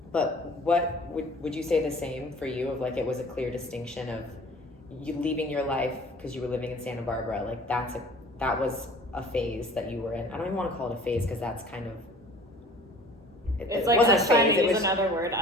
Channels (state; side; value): normal; both; correlation 0.48